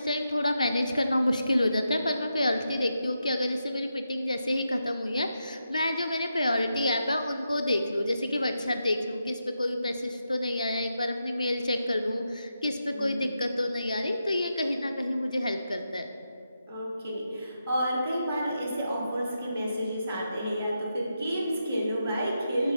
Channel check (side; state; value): both; inverted; correlation -0.86